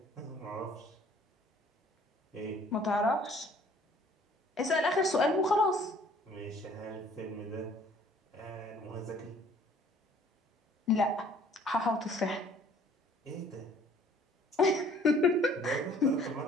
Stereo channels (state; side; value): normal; both; correlation 0.56